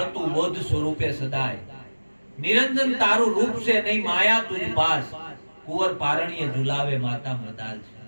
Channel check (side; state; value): both; inverted; correlation -1.00